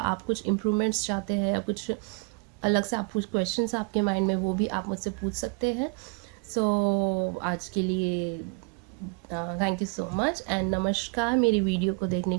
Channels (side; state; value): left; quieter; 32.9 dB